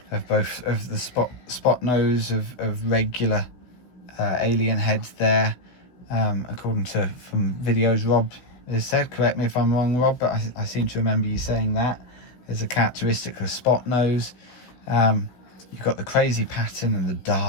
both of the spot nose of regular alien heads there, according to from videos Rob has said. Correct me if I'm wrong, Rob, but I seem to remember you saying that as a characteristic of spot nose. You've got the crazy pattern and the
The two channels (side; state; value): right; late; 16 ms